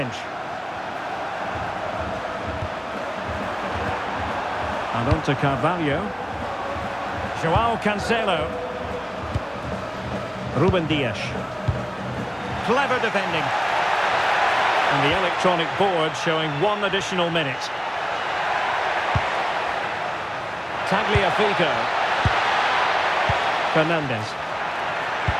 And on to Carvalho. João Cancelo. Ruben Dias. Clever defending. And the electronic board showing 1 additional minute. Tagliafico. Fernandez.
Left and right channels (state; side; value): identical; both; correlation 1.00